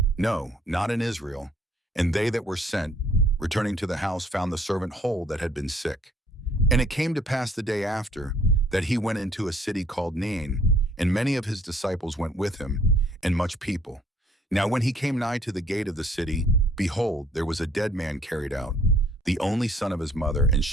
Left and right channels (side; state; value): both; normal; correlation 0.60